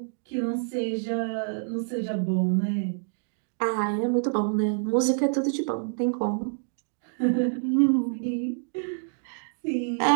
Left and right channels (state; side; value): silent; left; digital silence